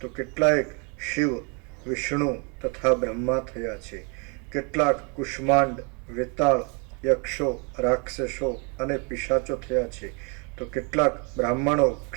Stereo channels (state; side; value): quieter; left; 33.9 dB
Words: કેટલાયક શિવ, વિષ્ણુ તથા બ્રહ્મા થયા છે. કેટલાક કુષ્માંડ, વેતાળ, યક્ષો, રાક્ષસો અને પિશાચો થયા છે, તો કેટલાક બ્રાહ્મણો,